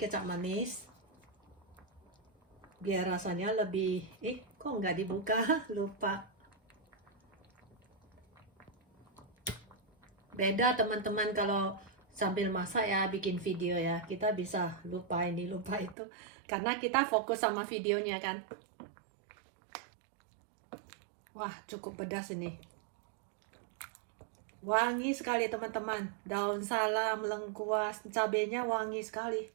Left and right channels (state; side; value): drops out; left; at 16.0 s